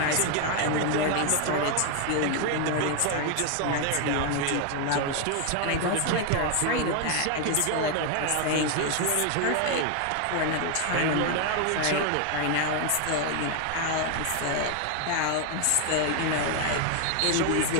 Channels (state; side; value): different; both; correlation 0.01